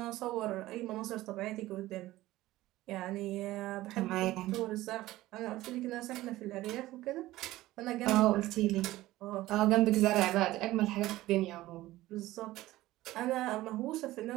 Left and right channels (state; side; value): quieter; left; 16.7 dB